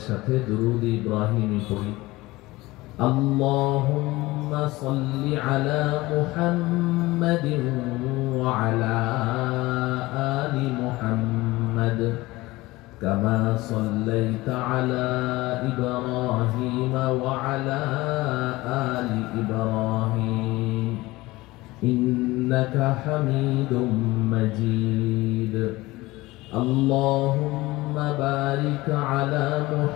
সাথে দুরূদ ইব্রাহিমি পড়ি اللهم صل على محمد وعلى آل محمد كما صليت على إبراهيم وعلى آل إبراهيم إنك حميد مجيد اللهم بارك على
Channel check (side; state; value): right; quieter; 19.9 dB